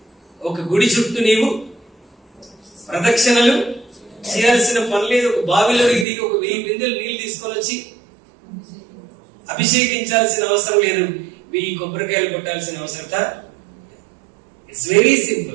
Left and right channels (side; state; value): left; drops out; at 6.1 s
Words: ఒక గుడి చుట్టూ నీవు ప్రదక్షిణలు చేయాల్సిన పని లేదు, ఒక బావిలో దిగి ఒక 1000 బిందెలు నీళ్లు తీసుకొని వచ్చి అభిషేకించాల్సిన అవసరం లేదు, 1000 కొబ్బరికాయలు కొట్టాల్సిన అవసరత. It's very